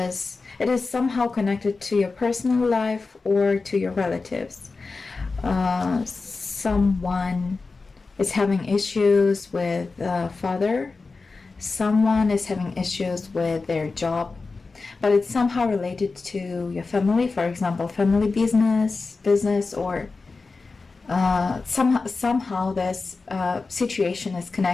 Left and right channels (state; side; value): quieter; right; 4.0 dB